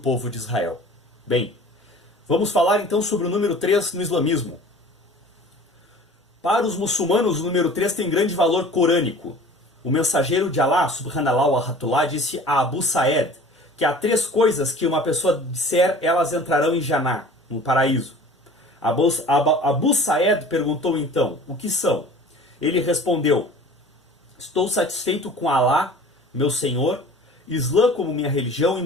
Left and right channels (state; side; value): normal; both; correlation 0.44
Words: de Israel. Bem, vamos falar então sobre o número 3 no islamismo. Para os muçulmanos, o número 3 tem grande valor corânico. O mensageiro de Allah, subhanallah wa rahmatullah, disse a Abu Sa'ed que há 3 coisas que uma pessoa disser, elas entrarão em Jannah, no paraíso. Abu Sa'ed perguntou então, o que são? Ele respondeu, estou satisfeito com Allah, meu Senhor, Islã como minha religião e